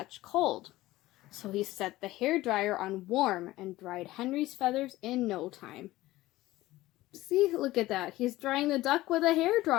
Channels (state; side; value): quieter; right; 17.3 dB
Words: cold, so he set the hairdryer on warm and dried Henry's feathers in no time. See, look at that. He's drying the duck with a